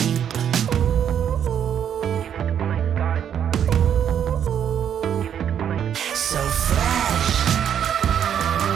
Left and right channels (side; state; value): left; quieter; 9.0 dB